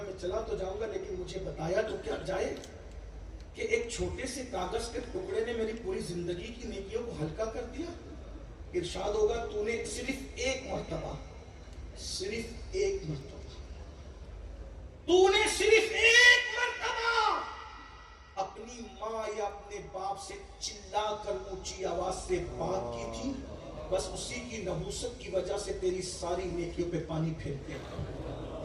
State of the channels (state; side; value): identical; both; correlation 1.00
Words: میں چلا تو جاؤں گا، لیکن مجھے بتایا تو کیا جائے کہ ایک چھوٹے سے کاغذ کے ٹکڑے نے میری پوری زندگی کی نیکیوں کو ہلکا کر دیا۔ ارشاد ہوگا تو نے صرف ایک مرتبہ اپنی ماں یا اپنے باپ سے چلا کر اونچی آواز سے بات کی تھی، بس اسی کی نحوست کی وجہ سے تیری ساری نیکیوں پہ پانی پھیرتے ہیں۔